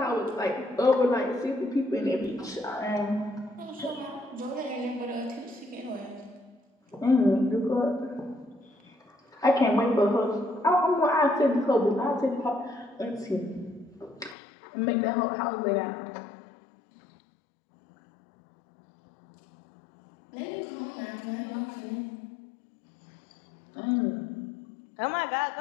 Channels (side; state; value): right; drops out; at 14.4 s